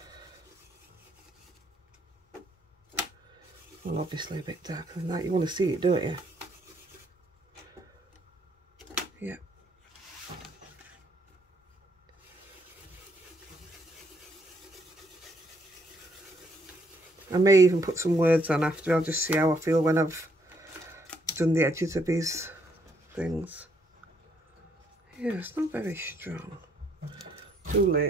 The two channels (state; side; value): normal; both; correlation 0.70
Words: well, obviously a bit darker than that. You want to see it, don't you? Yeah. I may even put some words on after. I'll just see how I feel when I've done the edges of these things. Yeah, it's not very strong. Too